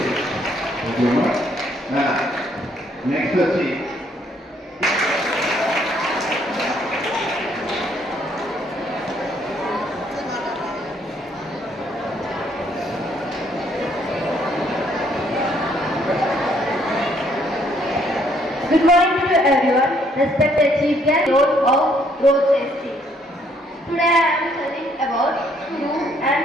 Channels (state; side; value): normal; both; correlation 0.67